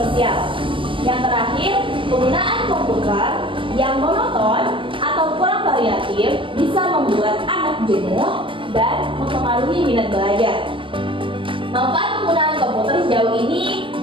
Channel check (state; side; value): late; left; 0.25 ms